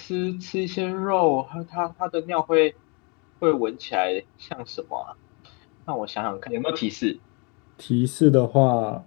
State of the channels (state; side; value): quieter; right; 32.7 dB